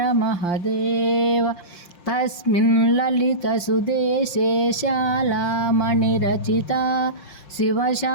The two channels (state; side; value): late; right; 5.7 ms